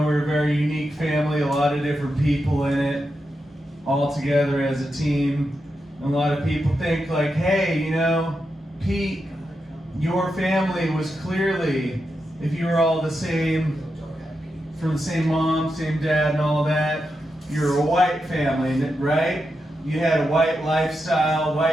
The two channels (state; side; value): normal; both; correlation 0.87